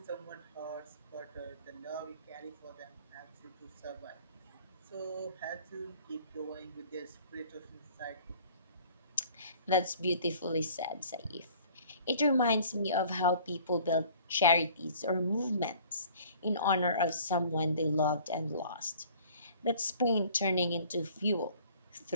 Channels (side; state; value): both; inverted; correlation -0.51